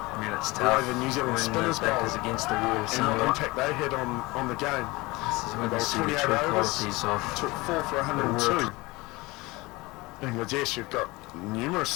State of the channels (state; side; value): quieter; right; 22.5 dB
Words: the New Zealand spinners bowled is against the wall and what impact they had on the game. This is when they you see the 28 true overs, qualities of took 4 for 102. Bangladesh, you've got numerous